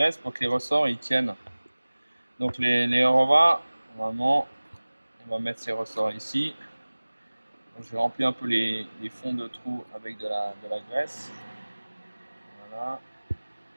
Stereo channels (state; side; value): inverted; both; correlation -1.00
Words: pour que les ressorts ils tiennent. Donc les revas, normalement, on va mettre ces ressorts ici. Donc, je vais remplir un peu les fonds de trous avec de la graisse. Voilà.